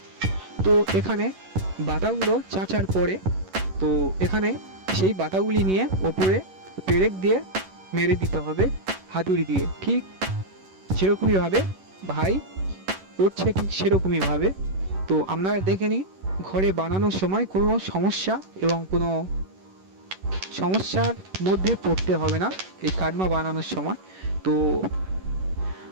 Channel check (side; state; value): left; late; 11 ms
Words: তো এখানে বাতাগুলো চাঁচার পরে তো এখানে সেই বাতাগুলি নিয়ে ওপরে পেরেক দিয়ে মেরে দিতে হবে হাতুড়ি দিয়ে, ঠিক যেরকমইভাবে ভাই করছে ঠিক সেরকমইভাবে। তো আপনারা দেখে নিন ঘরে বানানোর সময় কোনো সমস্যা এবং কোনো সমস্যার মধ্যে পড়তে হবে না এই কাটমা বানানোর সময়। তো